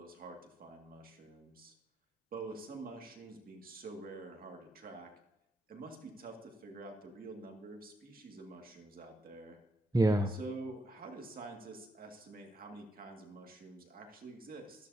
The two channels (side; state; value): both; normal; correlation 0.80